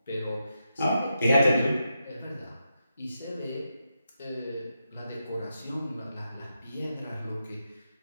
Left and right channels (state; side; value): inverted; both; correlation -0.86